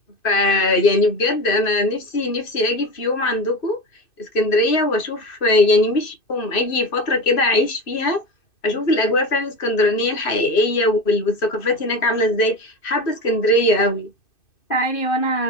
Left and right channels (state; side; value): late; right; 2.6 ms